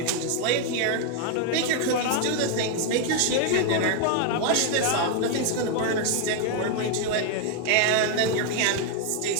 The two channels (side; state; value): both; different; correlation 0.01